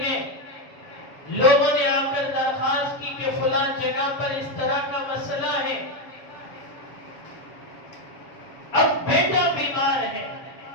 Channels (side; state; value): right; late; 7.1 ms